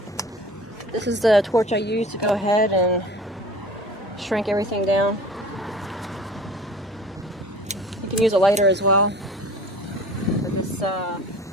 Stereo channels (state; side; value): normal; both; correlation 0.43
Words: This is the torch I use to go ahead and shrink everything down. You can use a lighter as well. But this